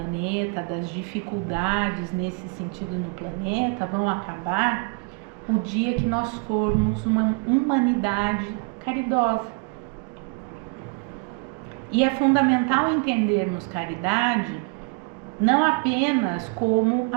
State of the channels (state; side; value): quieter; left; 34.3 dB